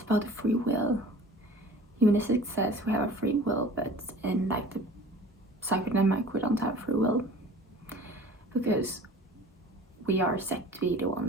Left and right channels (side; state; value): both; normal; correlation 0.44